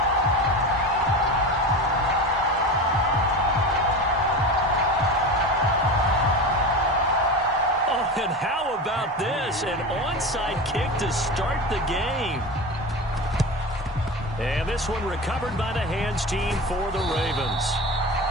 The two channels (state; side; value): normal; both; correlation 0.27